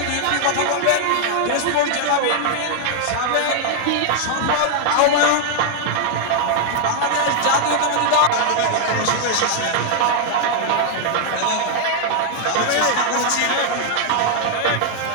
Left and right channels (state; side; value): different; both; correlation 0.00